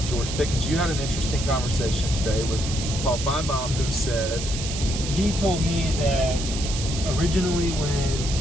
George Pickens. You had an interesting conversation today with Paul Feinbaum, who said... He told me that originally when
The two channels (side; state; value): right; noise; hiss, 7 dB below the sound